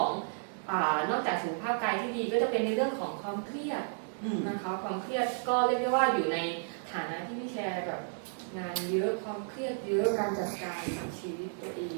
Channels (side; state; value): left; silent; digital silence